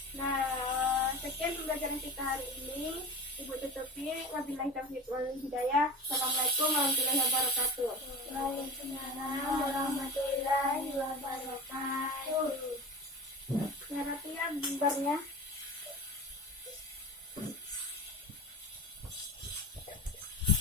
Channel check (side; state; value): both; normal; correlation 0.33